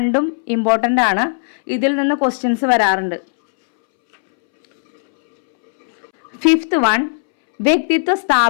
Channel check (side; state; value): right; silent; 65 dB below the other